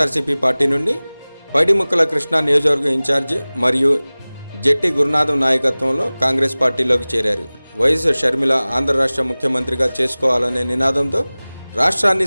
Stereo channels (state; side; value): inverted; both; correlation -0.99